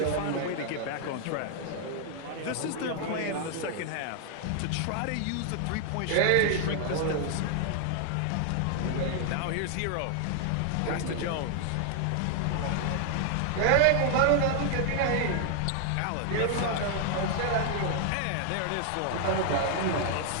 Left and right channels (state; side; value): different; both; correlation 0.00